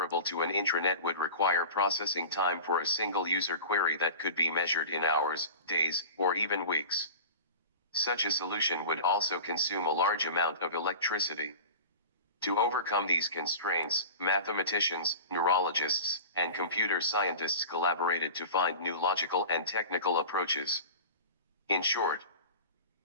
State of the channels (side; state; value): both; inverted; correlation -0.34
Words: to an intranet would require processing time for a single user query that could be measured in hours, days, or even weeks. Such a solution would also consume a large amount of electricity. To overcome these constraints, mathematicians, neurologists, and computer scientists collaborated to find new logical and technical approaches. In short,